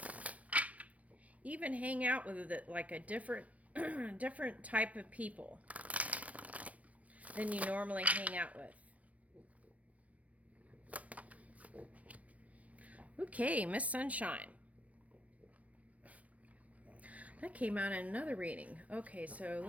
Even hang out with like a different different type of people than you normally hang out with. Okay, Miss Sunshine. That came out in another reading. Okay, so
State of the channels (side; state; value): left; late; 0.067 ms